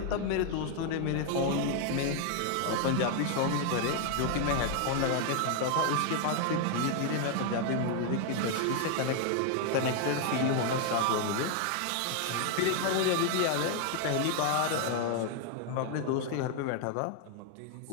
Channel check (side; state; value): both; different; correlation 0.00